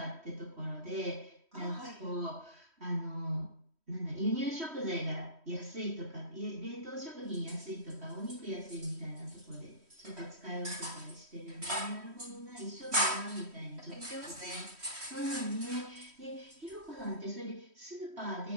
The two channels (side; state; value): left; late; 3.1 ms